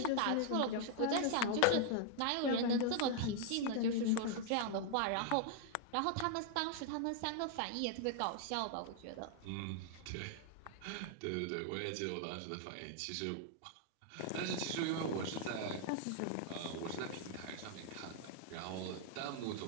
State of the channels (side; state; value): both; different; correlation -0.01